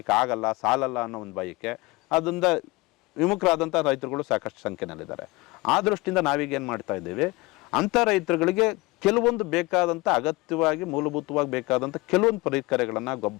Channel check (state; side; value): quieter; right; 23.0 dB